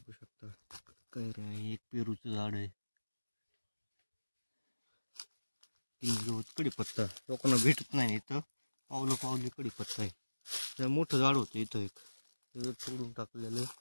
शकता कैऱ्या आहे. एक पेरूचं झाड आहे. गवत कडीपत्ता लोकांना भेटत नाही इथं. पावली कडीपत्ता आहे. त्या मोठं झाड होतं इथं एक, तोडून टाकलेलं.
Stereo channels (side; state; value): both; inverted; correlation -1.00